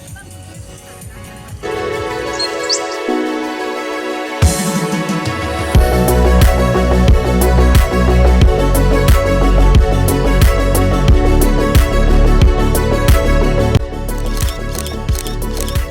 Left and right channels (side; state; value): both; identical; correlation 1.00